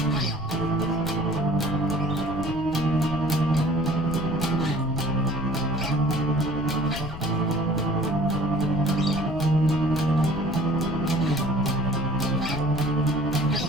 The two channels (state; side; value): noise; left; rumble, 10 dB below the sound